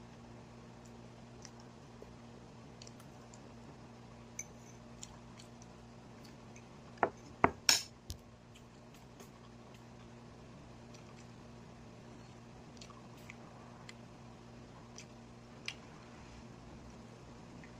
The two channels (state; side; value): identical; both; correlation 1.00